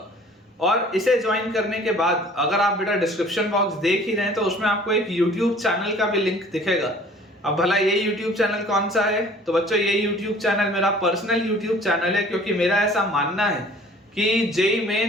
और इसे ज्वाइन करने के बाद अगर आप बेटा डिस्क्रिप्शन बॉक्स देख ही रहे हैं तो उसमें आपको एक यूट्यूब चैनल का भी लिंक दिखेगा। अब भला ये YouTube चैनल कौन सा है, तो बच्चों ये YouTube चैनल मेरा पर्सनल YouTube चैनल है, क्योंकि मेरा ऐसा मानना है कि जेई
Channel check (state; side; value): normal; both; correlation 0.51